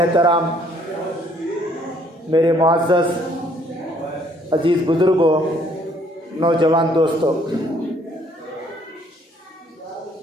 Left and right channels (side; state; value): both; normal; correlation 0.63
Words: मेरे मुअज़्ज़ज़ अज़ीज़ बुज़ुर्गों, नौजवान दोस्तों,